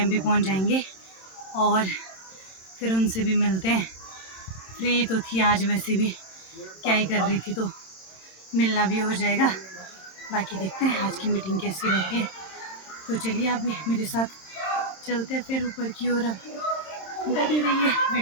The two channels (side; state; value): right; late; 27 ms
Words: भी पहुँच जाएंगे और फिर उनसे भी मिलते हैं। फ्री तो थी आज वैसे भी, क्या ही कर रही थी, तो मिलना भी हो जाएगा। बाकी देखते हैं आज की मीटिंग कैसी रहती है। तो चलिए आप भी मेरे साथ चलते हैं फिर ऊपर की ओर। अब बने रहिए